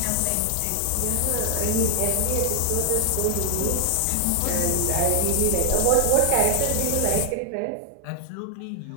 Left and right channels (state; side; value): different; both; correlation 0.00